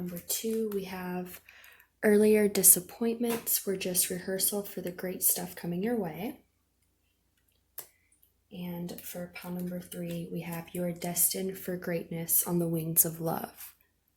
2, we have earlier disappointments were just rehearsal for the great stuff coming your way. And for pile number 3, we have you are destined for greatness on the wings of love.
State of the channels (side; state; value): both; identical; correlation 1.00